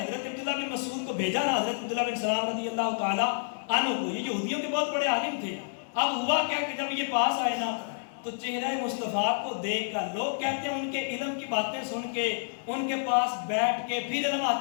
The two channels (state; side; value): silent; right; 58 dB below the other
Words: عبداللہ بن مسعود کو بھیجا نا, حضرت عبداللہ بن سلام رضی اللہ تعالیٰ عنہ کو, یہ یہودیوں کے بہت بڑے عالم تھے. اب ہوا کیا کہ جب یہ پاس آئے نا تو چہرہ مصطفیٰ کو دیکھ کر لوگ کہتے ہیں ان کے علم کی باتیں سن کے ان کے پاس بیٹھ کے پھر علم